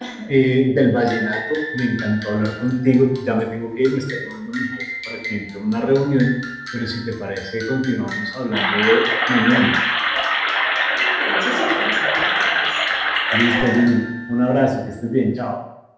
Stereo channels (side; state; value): both; identical; correlation 1.00